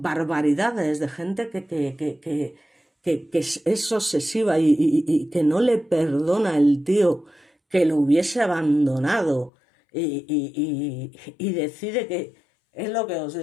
de gente que es obsesiva y que no le perdona el tío que lo hubiese abandonado y decide que es lo que os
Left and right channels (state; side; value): drops out; right; at 9.5 s